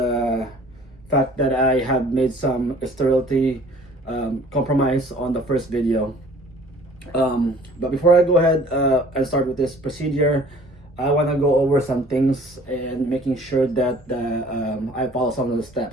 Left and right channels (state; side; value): normal; both; correlation 0.52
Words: fact that I have made some sterility compromise on the first video. But before I go ahead and start with this procedure, I want to go over some things and making sure that I follow some of the